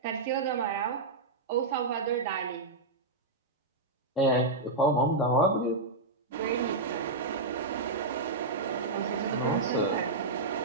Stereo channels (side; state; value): left; quieter; 3.3 dB